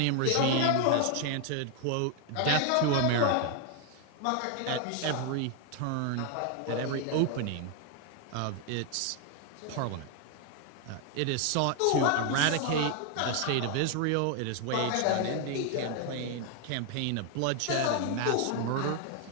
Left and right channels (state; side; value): different; both; correlation 0.00